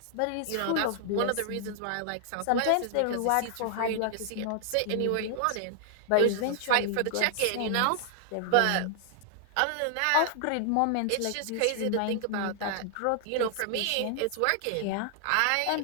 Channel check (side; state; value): both; different; correlation -0.01